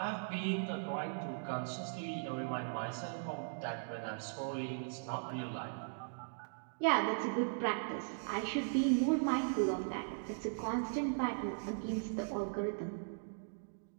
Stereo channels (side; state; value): left; silent; digital silence